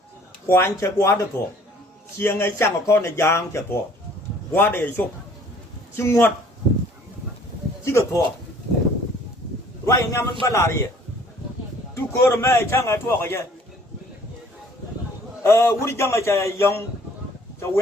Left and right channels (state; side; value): normal; both; correlation 0.56